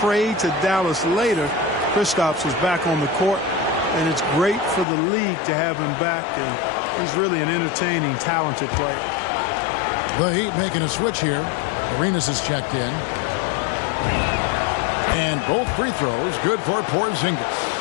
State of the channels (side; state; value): right; drops out; at 4.9 s